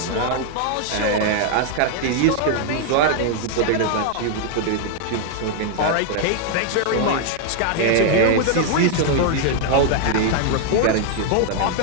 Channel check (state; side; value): different; both; correlation 0.00